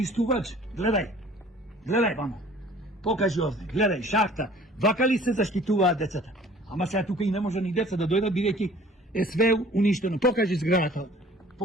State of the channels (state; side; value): normal; both; correlation 0.51